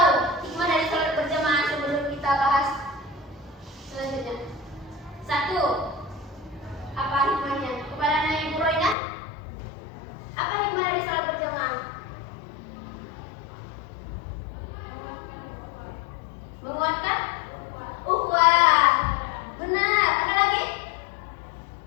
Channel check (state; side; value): drops out; right; at 9.0 s